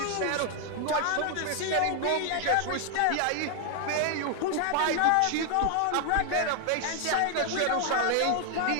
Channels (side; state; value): both; different; correlation 0.00